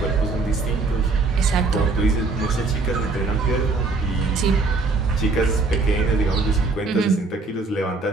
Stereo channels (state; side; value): quieter; left; 3.8 dB